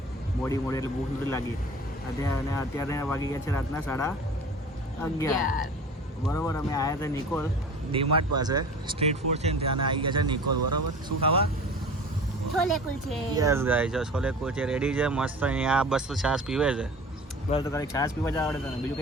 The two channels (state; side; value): normal; both; correlation 0.40